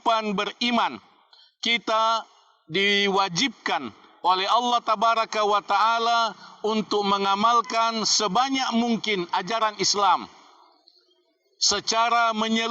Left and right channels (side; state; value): both; identical; correlation 1.00